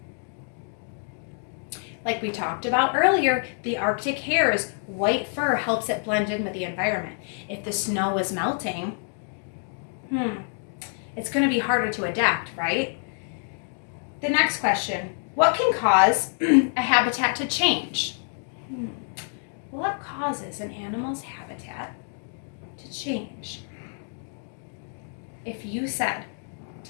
Like we talked about earlier, the Arctic hare's white fur helps it blend in with the environment. If the snow is melting, it's going to be harder to adapt, right? The next question, what can cause a habitat to change? What causes an animal's habitat to change? If you said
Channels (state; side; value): silent; right; 59 dB below the other